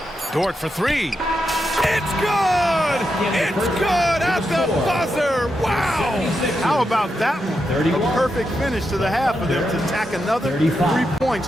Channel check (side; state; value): both; normal; correlation 0.85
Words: Dort for three. It's good! It's good at the buzzer! Wow! How about that one? A perfect finish to the half for them to tack another 3 points